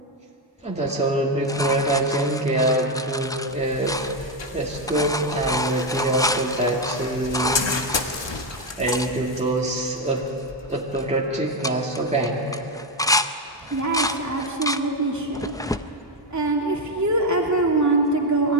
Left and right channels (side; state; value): both; normal; correlation 0.06